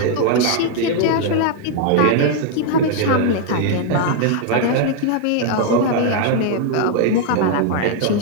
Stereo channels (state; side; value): different; both; correlation 0.00